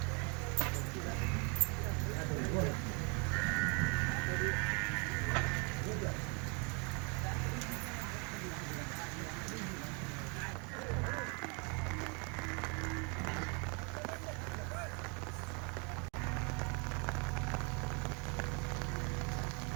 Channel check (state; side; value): quieter; left; 33.7 dB